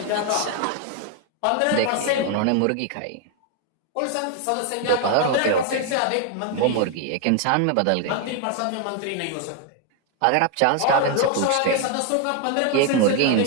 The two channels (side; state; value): both; different; correlation 0.01